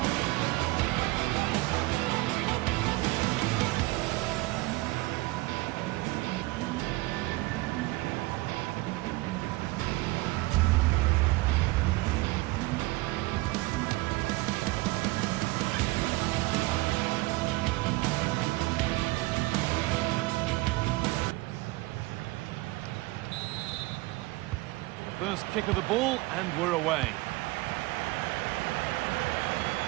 first kick of the ball, and we're away.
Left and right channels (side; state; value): left; quieter; 21.3 dB